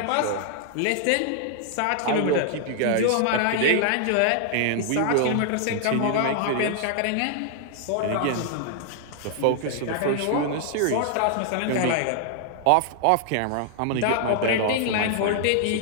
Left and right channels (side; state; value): both; different; correlation 0.00